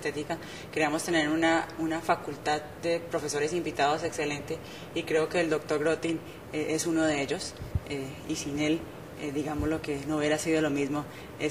queríamos tener una facultad de profesores invitados excelente, y creo que el doctor Grotting es uno de ellos, y sin él, digamos, lo que no hubiera sido lo mismo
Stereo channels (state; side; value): identical; both; correlation 1.00